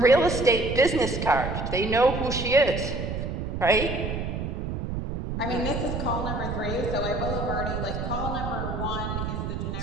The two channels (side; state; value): right; noise; rumble, 4 dB below the sound